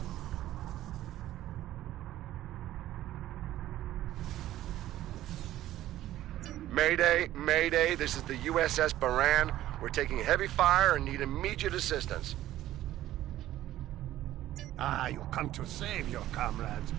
Mayday, Mayday, this is the USS Baran. We're taking heavy fire and need immediate assistance. You come to save your comrades.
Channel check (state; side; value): quieter; left; 14.0 dB